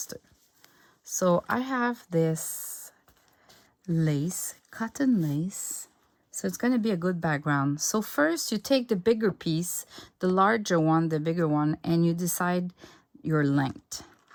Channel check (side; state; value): both; identical; correlation 1.00